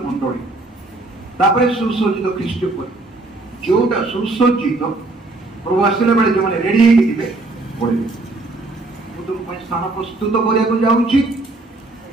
ମଣ୍ଡଳୀ, ତାପରେ ସୁସଜ୍ଜିତ ଖ୍ରୀଷ୍ଟ ପରିବାର। ଯୋଉଟା ସୁସଜ୍ଜିତ ପ୍ରଭୁ ଆସିଲା ବେଳେ ଯୋଉମାନେ ରେଡି ହେଇକି ଥିବେ ପଢିବେ। ମୁଁ ତୁମ ପାଇଁ ସ୍ଥାନ ପ୍ରସ୍ତୁତ କରିବାକୁ ଯାଉଛି,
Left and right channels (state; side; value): quieter; left; 3.1 dB